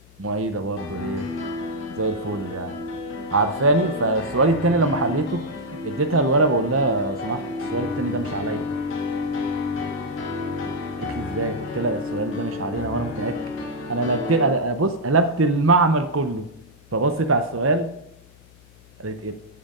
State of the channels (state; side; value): noise; left; hum, 26 dB below the sound